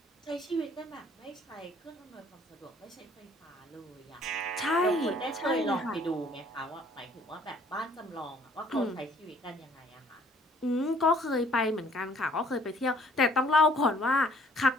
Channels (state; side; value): normal; both; correlation 0.59